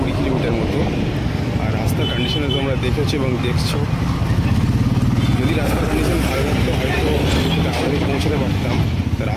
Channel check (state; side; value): identical; both; correlation 1.00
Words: কিলোমিটার মতো। আর রাস্তার কন্ডিশনে তোমরা দেখেছো এবং দেখছো, যদি রাস্তার কন্ডিশন ভালো থাকতো হয়তো আমাদের পৌঁছাতে পারতাম। তা